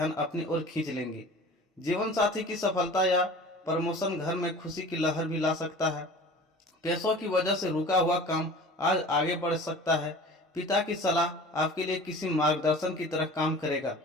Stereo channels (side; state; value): both; normal; correlation 0.41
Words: अपनी ओर खींच लेंगे। जीवन साथी की सफलता या प्रमोशन घर में खुशी की लहर भी ला सकता है। पैसों की वजह से रुका हुआ काम आज आगे बढ़ सकता है। पिता की सलाह आपके लिए किसी मार्गदर्शन की तरह काम करेगा।